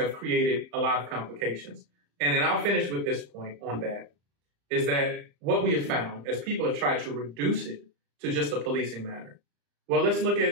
created a lot of complications. And then I'll finish with this point on that, is that what we have found as people have tried to reduce it to just a policing matter. Well, let's look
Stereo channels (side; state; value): left; late; 35 ms